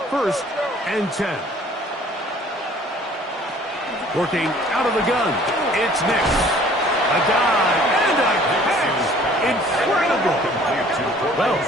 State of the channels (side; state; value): both; normal; correlation 0.53